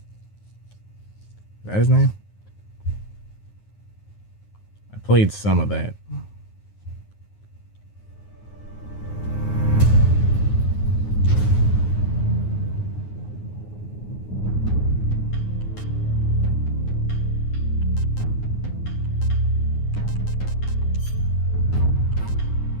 Is that his name? I played some of that.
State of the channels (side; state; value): right; late; 9.6 ms